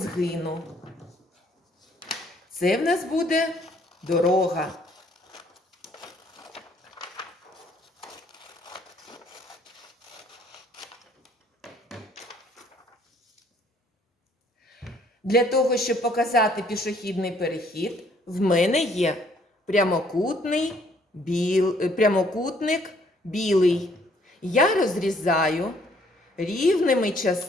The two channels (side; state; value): both; normal; correlation 0.63